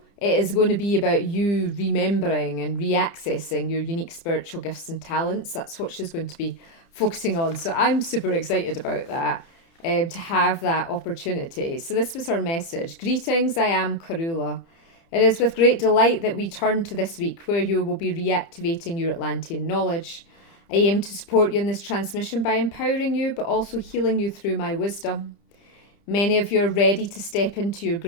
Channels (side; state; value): right; late; 30 ms